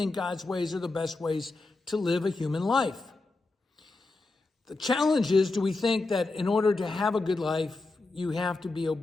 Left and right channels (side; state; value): right; quieter; 3.3 dB